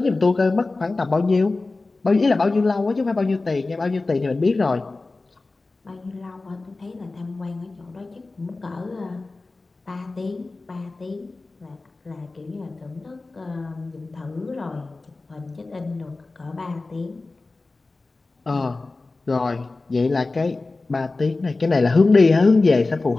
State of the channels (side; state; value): right; quieter; 3.4 dB